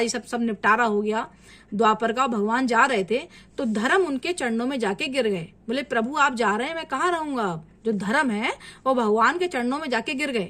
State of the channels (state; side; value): identical; both; correlation 1.00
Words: ये सब निपटारा हो गया द्वापर का, भगवान जा रहे थे, तो धर्म उनके चरणों में जाके गिर गए। बोले प्रभु आप जा रहे हैं, मैं कहाँ रहूंगा। अब जो धर्म है वो भगवान के चरणों में जाके गिर